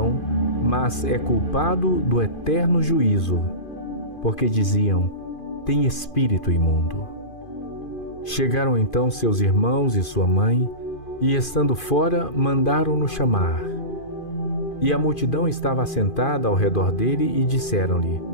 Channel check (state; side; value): late; right; 2.5 ms